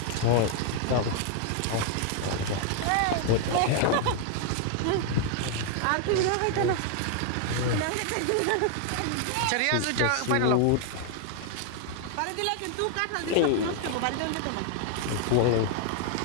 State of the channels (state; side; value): different; both; correlation 0.00